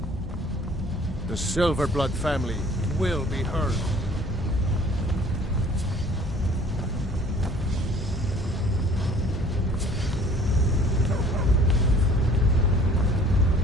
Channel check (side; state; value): both; normal; correlation 0.53